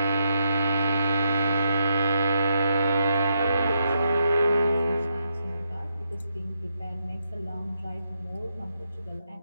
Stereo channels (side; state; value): both; inverted; correlation -0.79